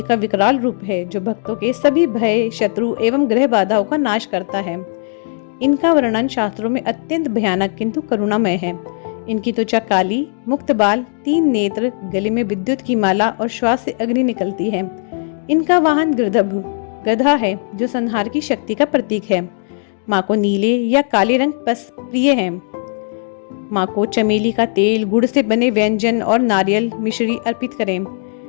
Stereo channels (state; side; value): silent; right; 61 dB below the other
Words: का विकराल रूप है जो भक्तों के सभी भय, शत्रु एवं ग्रह बाधाओं का नाश करता है। इनका वर्णन शास्त्रों में अत्यंत भयानक किंतु करुणामय है। इनकी त्वचा काली, मुक्त बाल, 3 नेत्र, गले में विद्युत की माला और श्वास से अग्नि निकलती है। इनका वाहन गधा है जो संहार की शक्ति का प्रतीक है। माँ को नीले या काले रंग प्रिय है। माँ को चमेली का तेल, गुड़ से बने व्यंजन और नारियल मिश्री अर्पित करें।